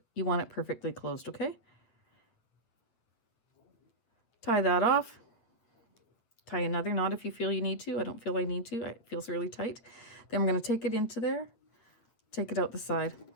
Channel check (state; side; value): late; right; 8.9 ms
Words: You want it perfectly closed, okay? Tie that off. Tie another knot if you feel you need to. I don't feel I need to. It feels really tight. Then we're going to take it into there, take it out the side,